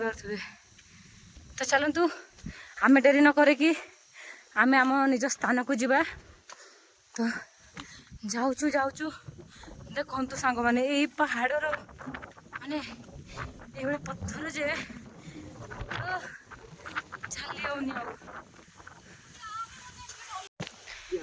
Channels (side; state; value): both; identical; correlation 1.00